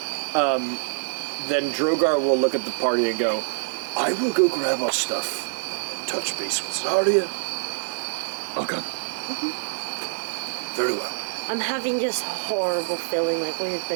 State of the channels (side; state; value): left; silent; digital silence